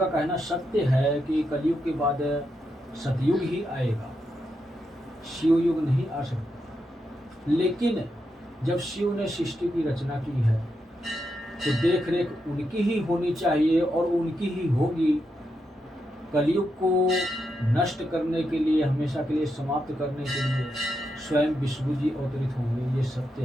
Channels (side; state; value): both; normal; correlation 0.84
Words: कहना सत्य है कि कलयुग के बाद सतयुग ही आएगा, शिवयुग नहीं आ सकता। लेकिन जब शिव ने सृष्टि की रचना की है तो देख रेख उनकी ही होनी चाहिए और उनकी ही होगी। कलयुग को नष्ट करने के लिए, हमेशा के लिए समाप्त करने के लिए स्वयं विष्णु जी अवतरित होंगे, ये सत्य